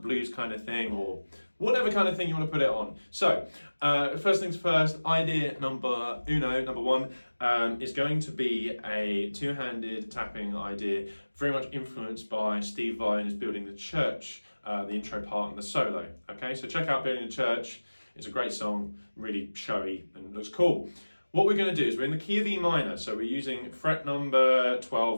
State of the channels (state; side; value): inverted; both; correlation -1.00